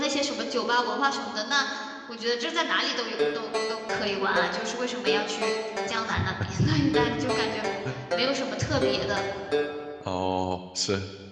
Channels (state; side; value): identical; both; correlation 1.00